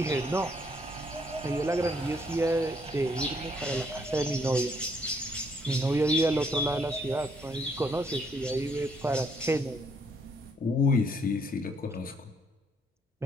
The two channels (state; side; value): normal; both; correlation 0.69